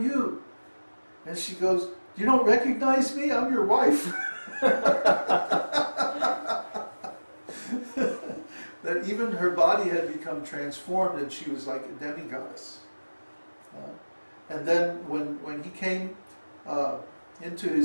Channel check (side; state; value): both; inverted; correlation -1.00